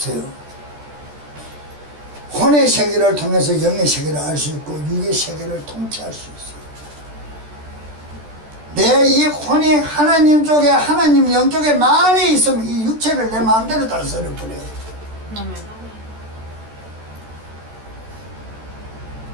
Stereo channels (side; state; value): left; late; 14 ms